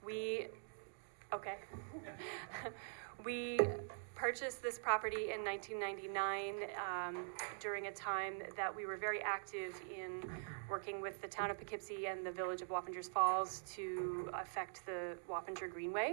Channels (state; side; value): silent; left; digital silence